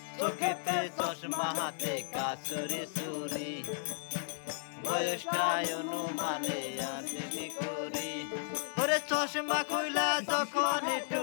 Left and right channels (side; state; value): right; silent; digital silence